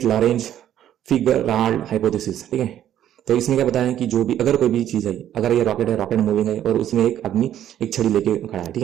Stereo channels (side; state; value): left; quieter; 11.2 dB